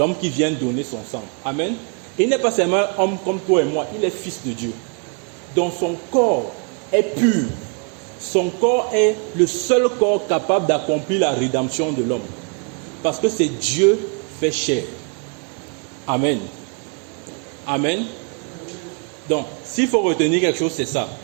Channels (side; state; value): left; quieter; 38.0 dB